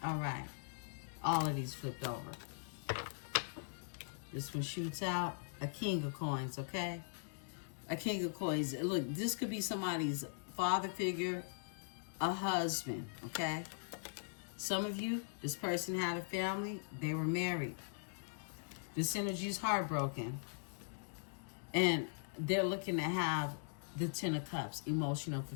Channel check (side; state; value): right; silent; digital silence